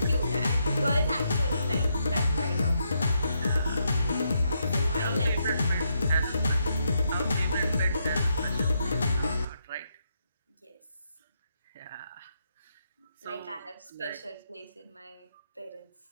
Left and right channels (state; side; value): inverted; both; correlation -0.79